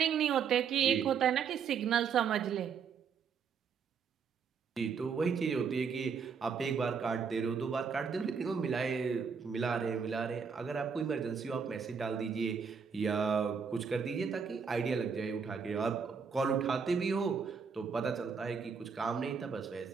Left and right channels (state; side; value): quieter; left; 6.2 dB